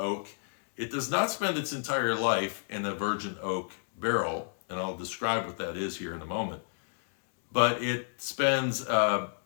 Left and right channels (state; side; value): silent; right; digital silence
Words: It does not spend its entire life in a virgin oak barrel, and I'll describe what that is here in a moment. But it spends a